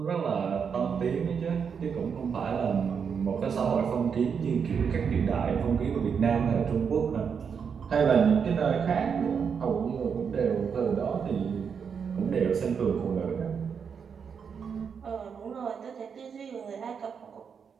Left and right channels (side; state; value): left; quieter; 6.6 dB